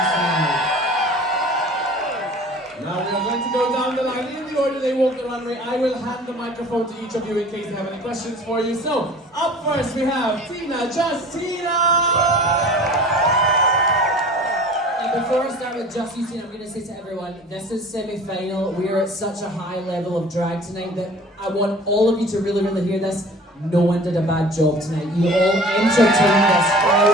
tonight. Now we are going to go down the line in the order they walk the runway. I will hand the microphone to each of you in case they have any questions for you. So, up first we have Tina, Tina! Before I start with Just Justina, I'm going to say to everyone, this is semi-final. We are at such a high level of drag tonight that I want all of you to really, really hear this. No one did a bad job tonight. You all entertained this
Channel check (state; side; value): normal; both; correlation 0.44